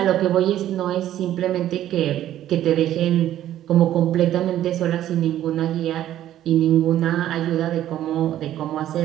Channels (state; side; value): quieter; left; 12.3 dB